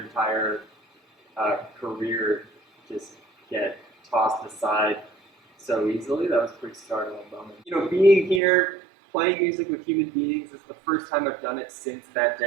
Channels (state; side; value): drops out; left; at 8.4 s